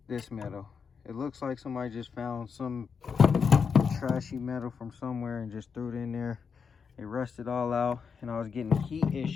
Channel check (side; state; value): right; quieter; 6.0 dB